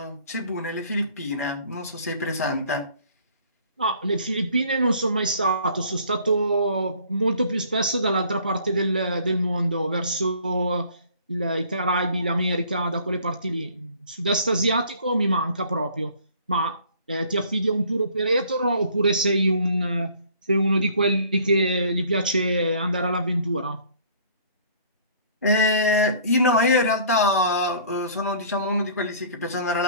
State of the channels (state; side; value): inverted; both; correlation -0.54